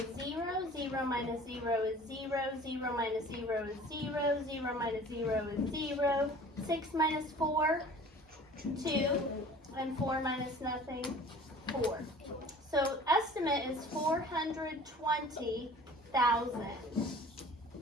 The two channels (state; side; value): normal; both; correlation 0.46